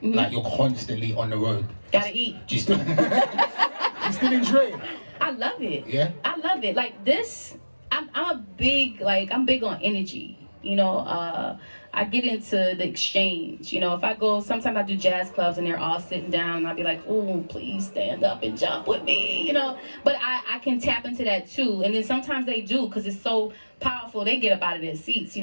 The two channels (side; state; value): both; inverted; correlation -1.00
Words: Like you're constantly on the road. Gotta eat. Do you still, you still enjoy it? I love it. Yeah? I love it. Like this, I'm big on energy. You know, I get into the exchange. You know, if I go, sometimes I do jazz clubs and they're all sitting down and I'll be like, oh, please stand up and jump with me, you know. But I can tap into that too. And then sometimes they do because it's so powerful. They get up out of their seats, you